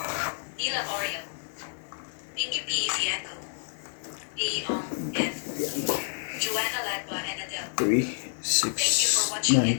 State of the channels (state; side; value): silent; right; 58 dB below the other